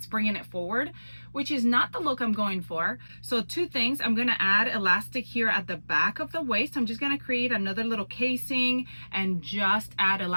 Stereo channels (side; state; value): both; inverted; correlation -1.00